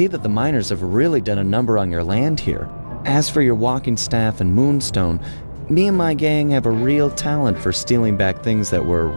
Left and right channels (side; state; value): both; inverted; correlation -1.00